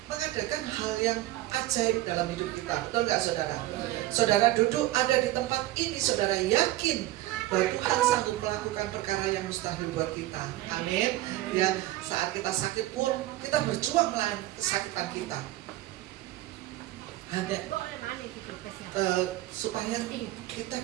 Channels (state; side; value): quieter; left; 16.2 dB